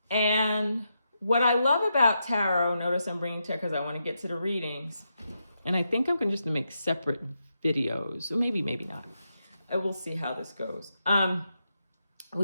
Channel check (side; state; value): both; inverted; correlation -0.84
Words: And what I love about tarot, notice I'm bringing tarot because I want to get to the readings. And I think I'm going to just make separate videos, or maybe not. We'll see how this goes.